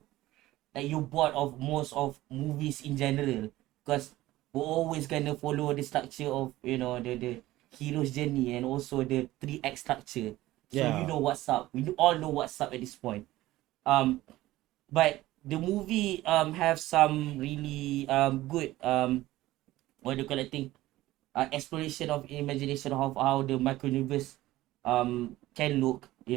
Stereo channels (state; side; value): quieter; left; 16.6 dB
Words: you're bored of most of movies in general. Because we're always gonna follow the structure of the hero's journey, and also the 3 act structure. So Yeah. you know what's up. We all know what's up at this point. But the movie have some really good what do you call it thing, exploration of imagination of how the micro universe can look,